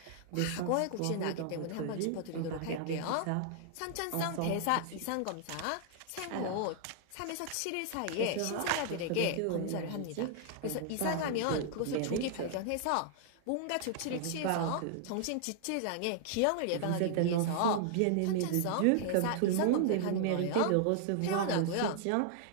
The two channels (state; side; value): different; both; correlation -0.01